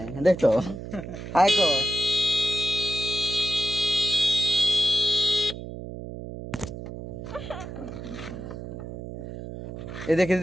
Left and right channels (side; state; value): right; noise; hum, 10 dB below the sound